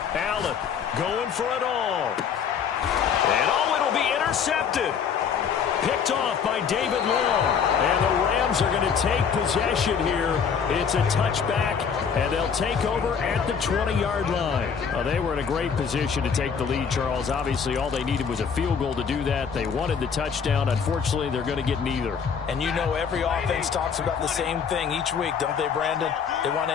Allen going for it all. And it'll be intercepted. Picked off by David Long. And the Rams are going to take possession here. It's a touchback, and they'll take over at the 20-yard line. Well, they were in a great position to take the lead, Charles. Obviously, all they needed was a field goal to do that. They wanted the touchdown. Unfortunately, they're going to get neither. And you know every offense talks about the same thing each week, don't they, Brandon? They want to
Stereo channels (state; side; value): quieter; right; 6.8 dB